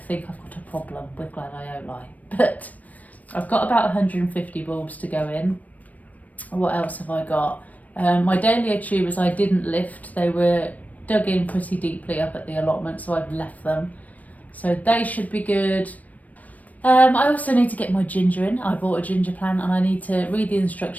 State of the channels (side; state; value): right; late; 0.073 ms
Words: I've got a problem with gladioli, but I've got about 150 bulbs to go in. What else have I got? My dahlia tubers I didn't lift, they were dug in pretty deeply up at the allotment, so I've left them, so they should be good. I also need to get my ginger in. I bought a ginger plant and I need to read the